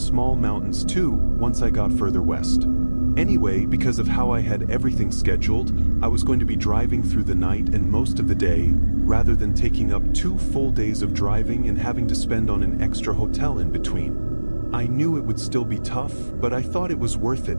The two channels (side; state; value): both; inverted; correlation -1.00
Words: mountains too once I got further west. Anyway, because of how I had everything scheduled, I was going to be driving through the night and most of the day, rather than taking up 2 full days of driving and having to spend on an extra hotel in between. I knew it would still be tough, but I thought it was worth